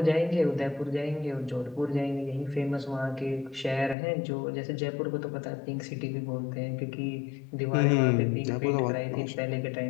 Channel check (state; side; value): drops out; right; at 4.0 s